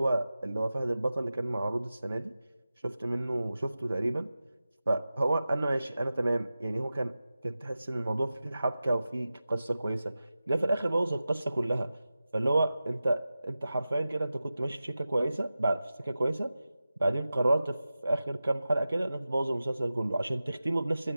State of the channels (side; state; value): both; inverted; correlation -0.95